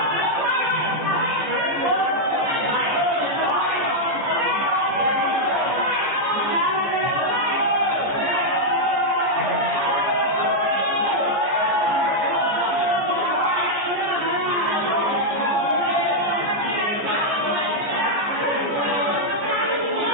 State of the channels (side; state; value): left; late; 14 ms